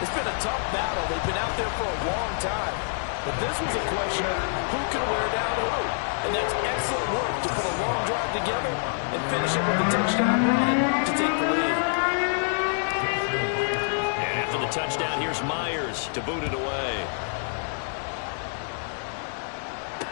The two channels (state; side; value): silent; right; digital silence